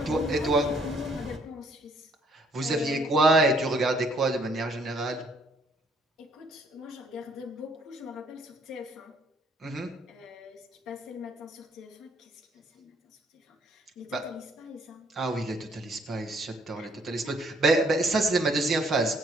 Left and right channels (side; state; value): both; normal; correlation 0.65